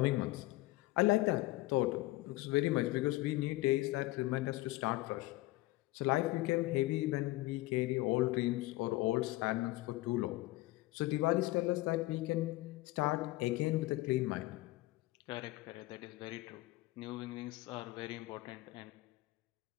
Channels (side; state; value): right; quieter; 19.3 dB